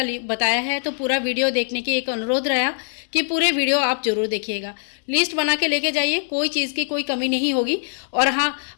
बताया है, तो पूरा वीडियो देखने की एक अनुरोध रहा कि पूरे वीडियो आप जरूर देखिएगा। लिस्ट बना के लेके जाइए, कोई चीज़ की कोई कमी नहीं होगी। और हाँ,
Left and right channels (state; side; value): silent; right; digital silence